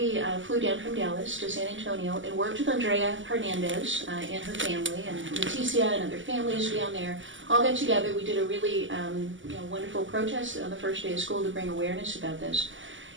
flew down from Dallas to San Antonio and worked with Andrea Hernandez and her family, and Leticia and other families down there. All got together. We did a really wonderful protest on the first day of school to bring awareness about this.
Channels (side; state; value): left; late; 0.55 ms